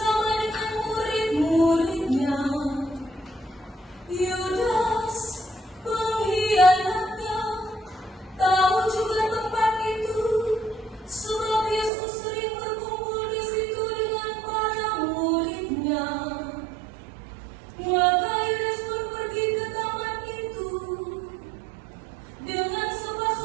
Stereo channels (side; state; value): left; drops out; at 11.9 s